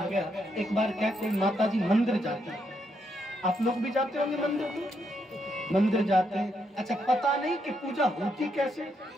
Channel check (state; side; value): normal; both; correlation 0.78